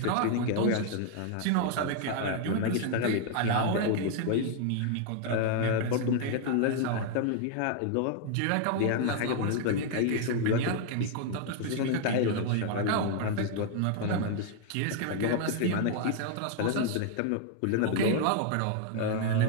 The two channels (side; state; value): both; different; correlation 0.00